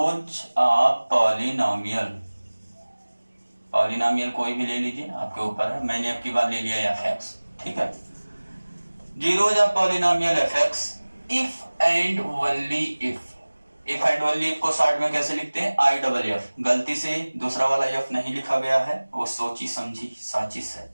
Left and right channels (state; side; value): inverted; both; correlation -1.00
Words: of polynomial. Polynomial कोई भी ले लीजिए, आपके ऊपर है, मैंने आपकी बात ले लिया fx, ठीक है। Zeros of polynomial fx if and only if and only if को शॉर्ट में कैसे लिखते हैं, IFF। गलती से दूसरा वाला f नहीं लिखा गया है, वो सोची समझी साजिश है।